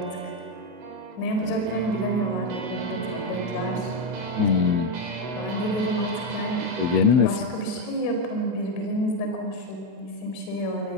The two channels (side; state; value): left; late; 23 ms